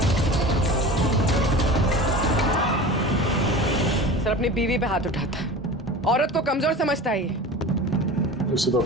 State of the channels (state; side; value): normal; both; correlation 0.35